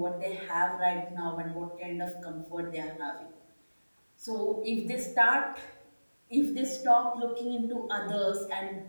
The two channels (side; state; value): both; inverted; correlation -1.00